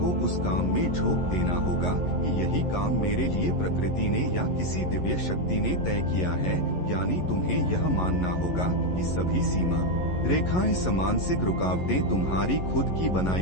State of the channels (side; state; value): right; late; 11 ms